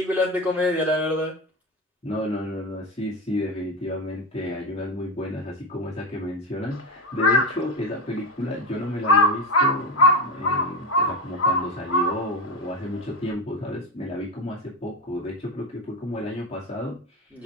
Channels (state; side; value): normal; both; correlation 0.17